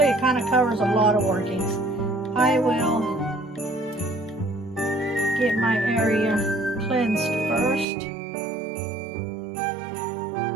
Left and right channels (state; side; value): drops out; left; at 7.9 s